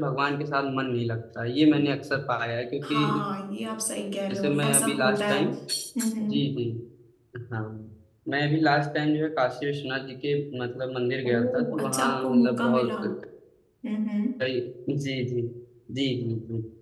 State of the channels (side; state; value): both; identical; correlation 1.00